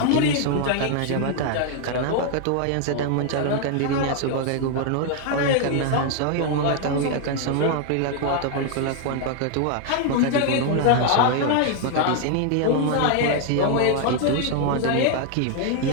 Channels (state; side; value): different; both; correlation 0.00